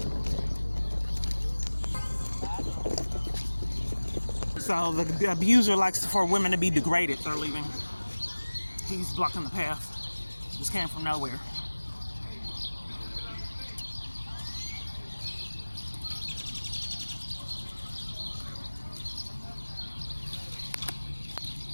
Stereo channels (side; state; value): both; inverted; correlation -1.00